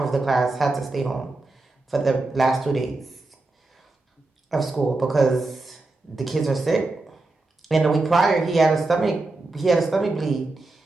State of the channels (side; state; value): left; quieter; 3.2 dB